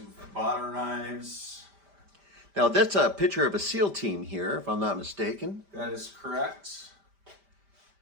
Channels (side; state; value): left; late; 5.1 ms